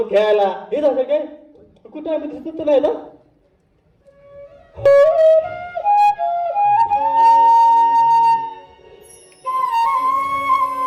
खेळायला. हेच असेल काय कुठं आम्ही दिसत तर नाही ना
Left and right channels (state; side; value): identical; both; correlation 1.00